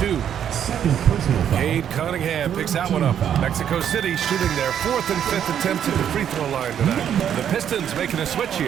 2. Cade Cunningham picks that one up. Mexico City shooting their 4th and 5th attempts at the free throw line tonight. The Pistons making a switch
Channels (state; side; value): quieter; left; 9.3 dB